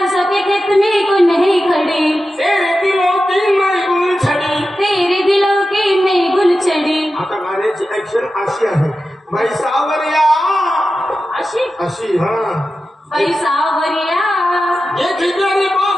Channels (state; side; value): normal; both; correlation 0.92